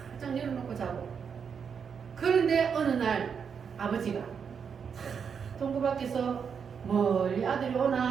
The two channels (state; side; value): quieter; left; 6.7 dB